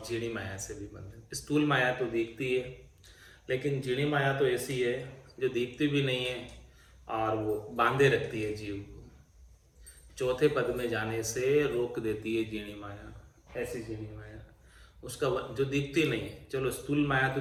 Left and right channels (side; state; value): both; identical; correlation 1.00